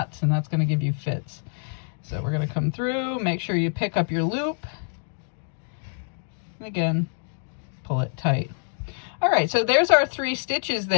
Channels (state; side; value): silent; right; digital silence